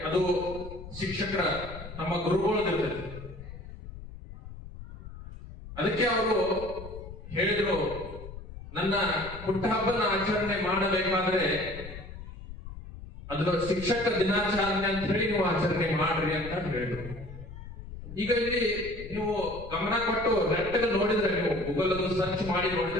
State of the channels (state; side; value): noise; left; rumble, 13 dB below the sound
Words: ಅದು ಶಿಕ್ಷಕರ, ನಮ್ಮ ಗುರುಗಳದಿರ್ತದೆ. ಅದಕ್ಕೆ ಅವರು ಹೇಳಿದ್ರು, ನನ್ನ ಹುಟ್ಟಹಬ್ಬನ ಆಚರಣೆ ಮಾಡಬೇಕಾದ್ರೆ ಅದರ ಶಿಕ್ಷಕ ದಿನಾಚರಣೆ ಅಂತ ಹೇಳಿ ನೀವು ಆಚರಣೆ ಮಾಡ್ರಿ ಅಂತ ಹೇಳಿದ್ರು. ಈಗ ಇಲ್ಲಿ ನೀವು ಗಮನ ಕೊಟ್ಟು ನೆಟ್ಟಗೆ ನೋಡಿದ್ರೆ, ನೀವು ಗೂಗಲ್ ಅನ್ನು ಸರ್ಚ್ ಮಾಡಿ